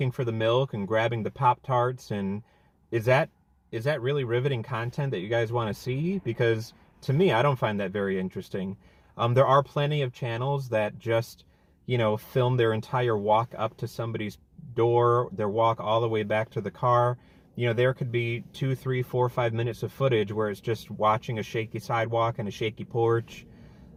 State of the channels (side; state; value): both; identical; correlation 1.00